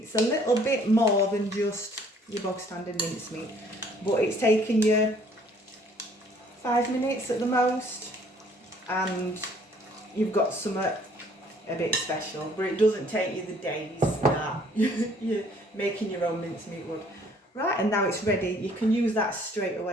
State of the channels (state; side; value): normal; both; correlation 0.60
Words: a little bit more than just your bog standard mincemeat, but it's taken you 5 minutes at the most, and you've got something a bit special, but it doesn't take you the days that you're making your own mincemeat would. Right, and now it's ready. You can use that straight